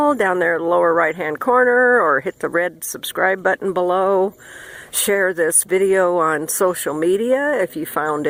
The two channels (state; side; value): identical; both; correlation 1.00